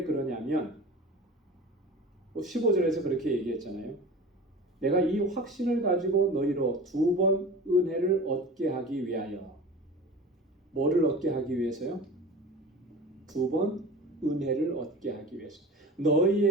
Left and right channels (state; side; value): normal; both; correlation 0.37